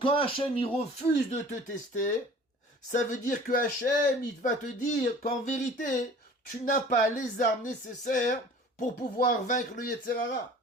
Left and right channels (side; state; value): both; normal; correlation 0.46